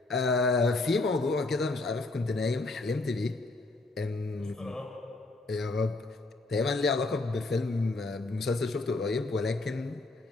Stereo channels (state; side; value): quieter; right; 3.2 dB